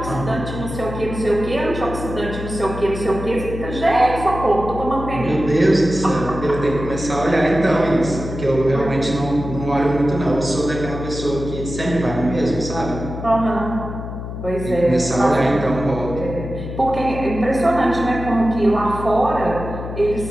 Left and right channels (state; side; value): noise; left; hum, 8 dB below the sound